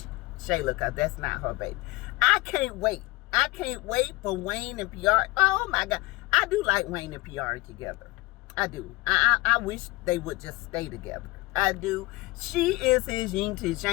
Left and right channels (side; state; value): right; quieter; 22.6 dB